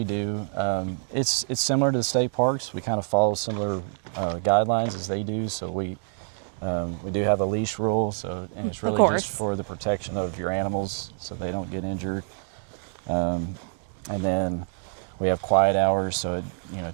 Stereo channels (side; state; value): left; silent; 60 dB below the other